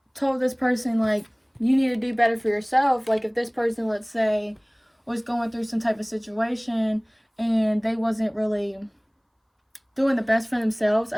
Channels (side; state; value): both; identical; correlation 1.00